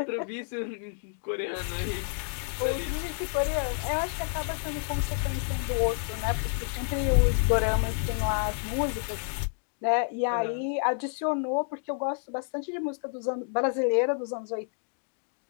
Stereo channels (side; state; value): right; silent; 58 dB below the other